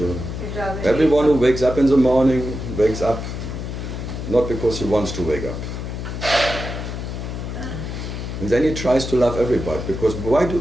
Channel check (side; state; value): left; noise; hum, 6 dB below the sound